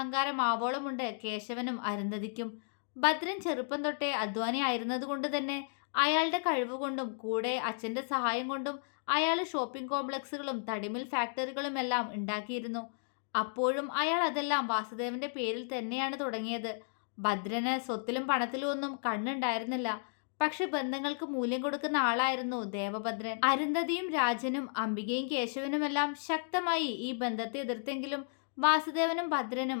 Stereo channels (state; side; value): silent; right; digital silence